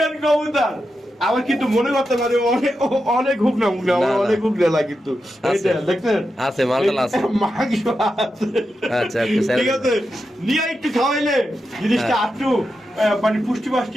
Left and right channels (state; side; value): normal; both; correlation 0.88